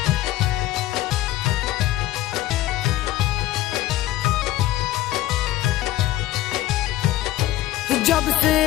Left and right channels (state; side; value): quieter; right; 15.2 dB